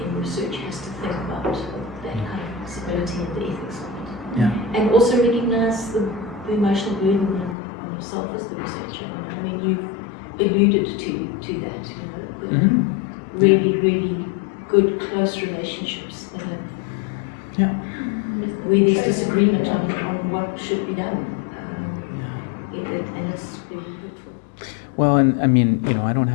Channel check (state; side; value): drops out; right; at 7.6 s